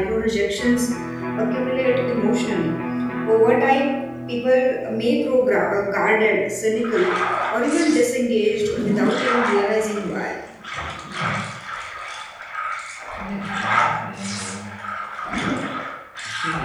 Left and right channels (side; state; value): both; identical; correlation 1.00